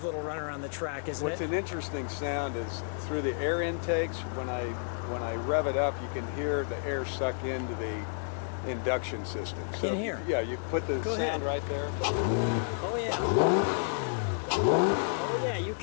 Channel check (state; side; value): silent; right; 56 dB below the other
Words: little run around the track, isn't What's it? an interesting sound is through the air intakes. When I rev it up, you can hear the air suck into the induction system. So In here? Yeah, you put the sound right there. Oh yeah, you